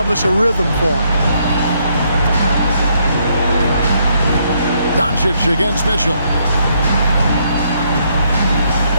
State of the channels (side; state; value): both; inverted; correlation -0.73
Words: a rhythm for him. Doncic against Mitchell.